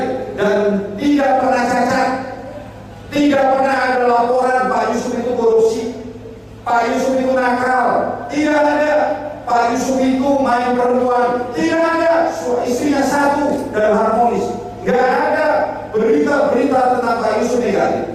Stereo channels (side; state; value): both; identical; correlation 1.00